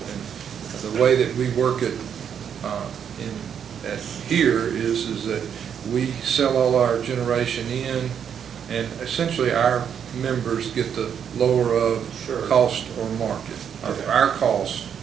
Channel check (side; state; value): left; quieter; 8.1 dB